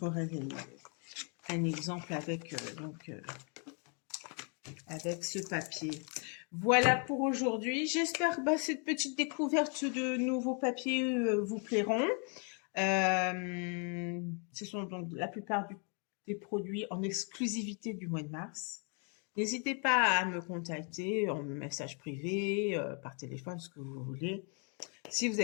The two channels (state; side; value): quieter; right; 38.6 dB